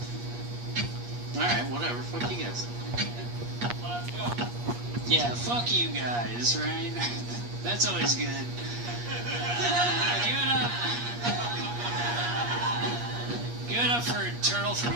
Alright, whatever. Fuck you guys. Yeah, fuck you guys, right? That's always good. Give it up. Give it up for Turtle from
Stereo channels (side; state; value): left; late; 8.4 ms